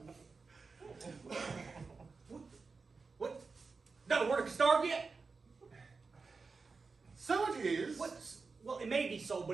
What? Not a word of starved yet? So it is. What? Well, it may be so,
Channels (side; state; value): left; quieter; 4.4 dB